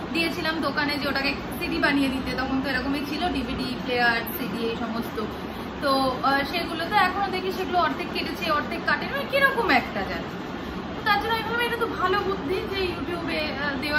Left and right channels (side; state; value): both; identical; correlation 1.00